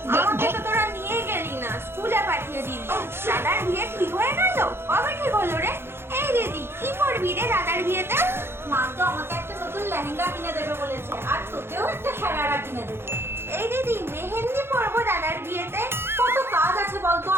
আমাকে তো তোরা নিয়ে গেলি না, স্কুলে পাঠিয়ে দিলি। দাদার বিয়ে ঠিক হয়ে গেল? কবে ঠিক হলো রে? এই দিদি, কি করবি রে দাদার বিয়েতে? মা তো আমাকে একটা নতুন লেহেঙ্গা কিনে দেবে বলেছে, আর তোকেও একটা সারারা কিনে দেবে। এই দিদি, মেহেন্দি পরবো দাদার বিয়েতে। কত কাজ আছে বলতো,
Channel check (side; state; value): left; late; 0.11 ms